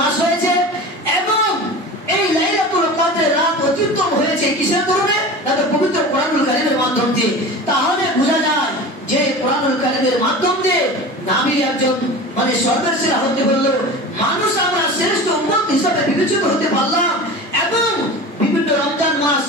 মাস হয়েছে এবং এই লাইলাতুল কদরের রাত অত্যুত্তম হয়েছে কিসের কারণে? পবিত্র কোরআনুল কারীমের মাধ্যম দিয়ে। তাহলে বোঝা যায় যে কোরআনুল কারীমের মাধ্যম দিয়ে নবী একজন মানে সর্বের সেরা হতে বলল, মানুষ আমরা শ্রেষ্ঠ উম্মত হিসাবে বিবেচিত হতে পারলাম এবং বিভিন্ন রমজান মাস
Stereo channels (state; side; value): normal; both; correlation 0.34